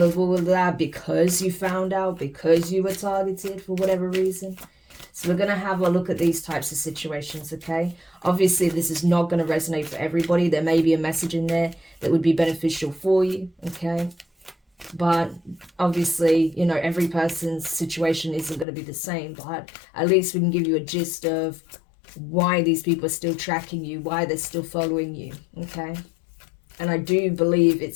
of all of that because you found out, because you were targeted for whatever reason. So we're going to have a look at these types of situations, okay? Obviously, this is not going to resonate for everybody. There may be a message in there that would be beneficial for you, okay? But obviously, every person's situation isn't going to be the same. But at least we can give you a gist of why these people are still tracking you, why they're still following you, okay? And I do believe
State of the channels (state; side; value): drops out; right; at 18.7 s